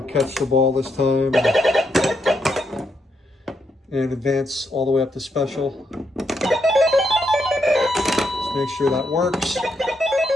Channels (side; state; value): both; normal; correlation 0.79